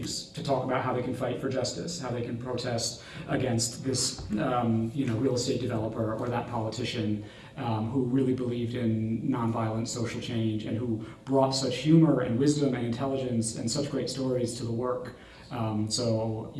to talk about how they can fight for justice, how they can protest against this real estate developer or that politician who really believed in nonviolent social change and who brought such humor and wisdom and intelligence and such great stories to the work. So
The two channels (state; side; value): identical; both; correlation 1.00